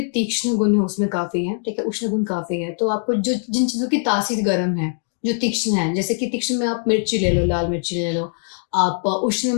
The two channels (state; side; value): silent; right; 61 dB below the other